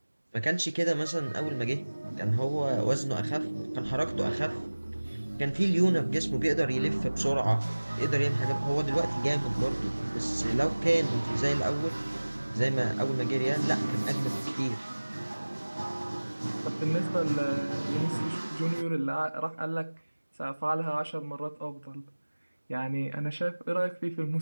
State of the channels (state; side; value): inverted; both; correlation -1.00